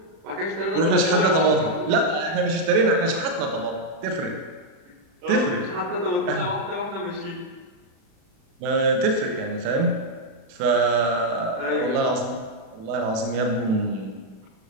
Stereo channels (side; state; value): left; late; 36 ms